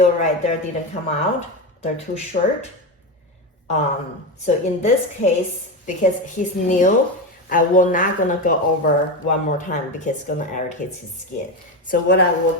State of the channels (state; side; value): normal; both; correlation 0.16